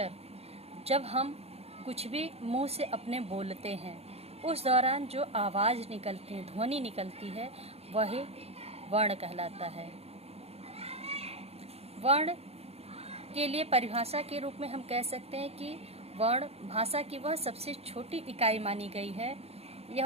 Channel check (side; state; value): left; late; 0.30 ms